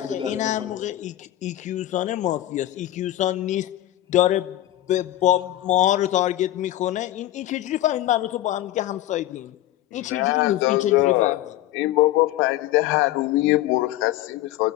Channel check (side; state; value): right; quieter; 14.3 dB